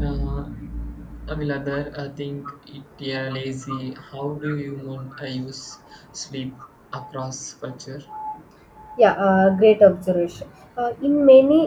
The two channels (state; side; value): identical; both; correlation 1.00